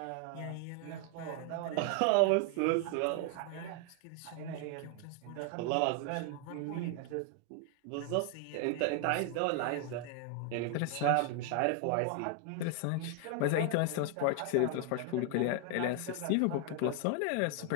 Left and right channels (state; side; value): different; both; correlation 0.00